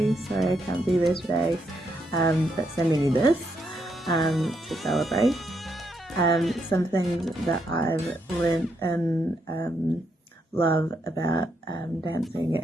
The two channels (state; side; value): normal; both; correlation 0.78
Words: Sorry I can't be there today, but sending you this to celebrate. Something that I've learned and love about dancing